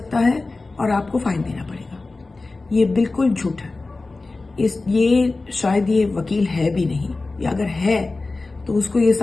है और आपको फाइन देना पड़ेगा। ये बिल्कुल झूठ है। ये शायद ये वकील है भी नहीं, या अगर है तो उसको ये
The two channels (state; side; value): quieter; right; 3.5 dB